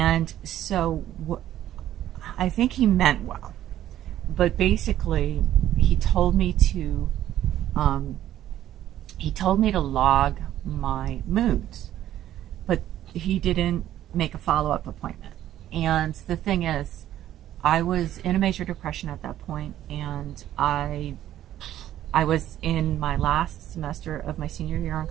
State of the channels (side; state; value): left; quieter; 12.4 dB